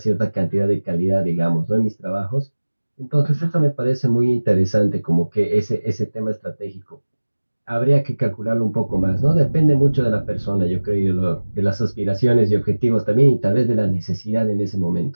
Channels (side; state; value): both; inverted; correlation -1.00